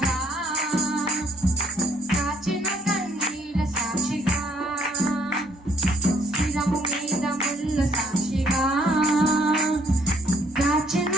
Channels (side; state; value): both; normal; correlation 0.65